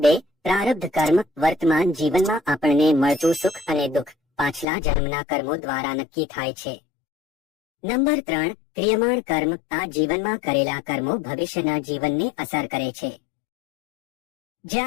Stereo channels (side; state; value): right; drops out; at 4.7 s